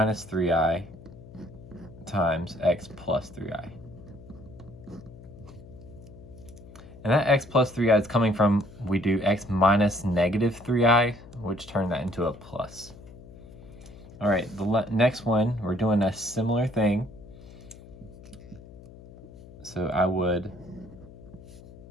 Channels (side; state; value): left; noise; hum, 18 dB below the sound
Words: 3i times x plus 3i. And that x plus 3i is coming from, we do x minus negative 3i, which turned that into a plus. All right, the next one, we're doing a similar thing. So I would